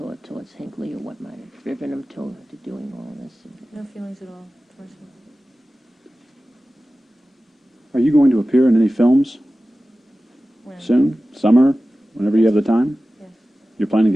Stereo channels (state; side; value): normal; both; correlation 0.96